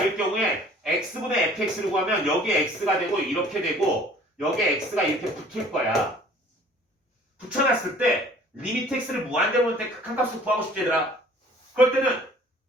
경우에 x분의 fx를 구하면 여기에 x가 되고 이렇게 되고 여기에 x가 이렇게 붙을 거야. 붙여놨을 때 리미트 x를 무한대로 놓을 때 극한값을 구하고 싶지 얘들아. 그럴 때는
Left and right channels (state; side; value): normal; both; correlation 0.52